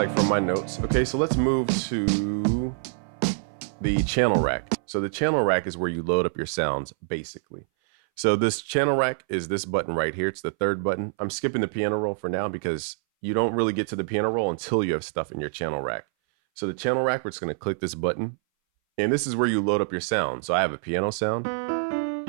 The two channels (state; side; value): silent; left; 60 dB below the other